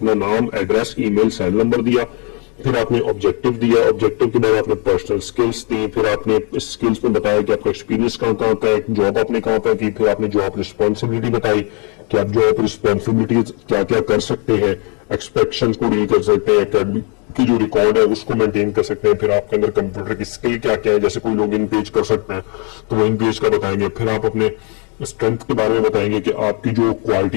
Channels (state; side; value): quieter; right; 36.3 dB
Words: नाम, एड्रेस, ईमेल, सेल नंबर दिया, फिर आपने ऑब्जेक्टिव दिया, ऑब्जेक्टिव के बाद आपने पर्सनल स्किल्स दी, फिर आपने इस स्किल्स में बताया कि आपका एक्सपीरियंस कहाँ कहाँ का है, जॉब आपने कहाँ पर की, फिर आपने जॉब रिस्पॉन्सिबिलिटी बताई कि आप जॉब रिस्पॉन्सिबिलिटी क्या क्या कर सकते हैं, एक्सपेक्शन को डील कर सकते हैं, एकेडमिक की जो रिकॉर्ड है उसको मेंटेन कर सकते हैं, फिर आपके अंदर कंप्यूटर की स्किल क्या क्या है, जैसे कोई लोग इन पेज कर सकते हैं तो वो इन पेज का बताएंगे, फिर आप अपने स्ट्रेंथ के बारे में बताएंगे कि आपकी जो